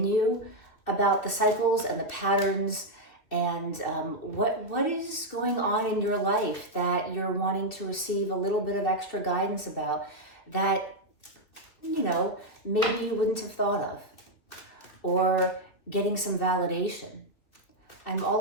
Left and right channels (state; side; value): late; right; 2.9 ms